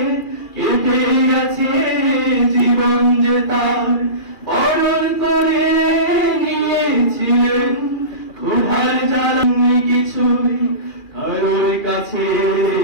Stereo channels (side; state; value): right; late; 2.4 ms